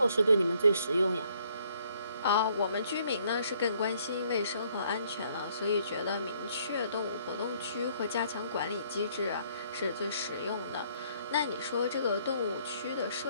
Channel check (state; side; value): inverted; both; correlation -0.65